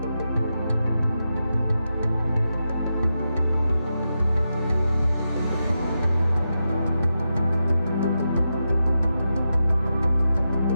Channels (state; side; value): inverted; both; correlation -0.88